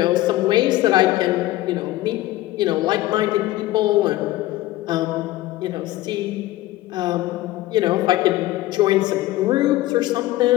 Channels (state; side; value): quieter; right; 16.6 dB